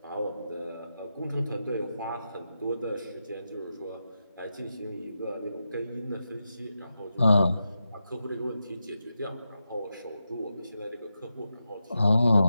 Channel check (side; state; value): both; inverted; correlation -0.88